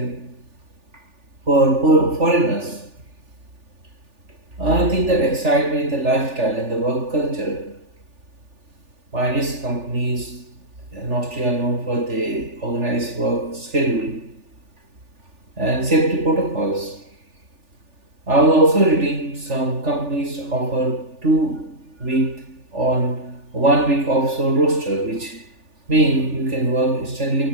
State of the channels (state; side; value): late; left; 3.4 ms